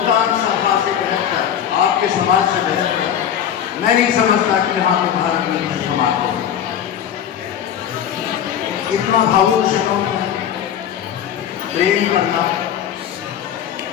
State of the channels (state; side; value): quieter; right; 9.4 dB